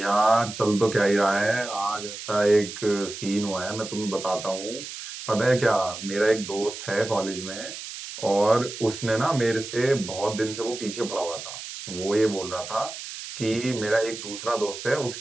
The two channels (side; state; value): right; noise; hiss, 10 dB below the sound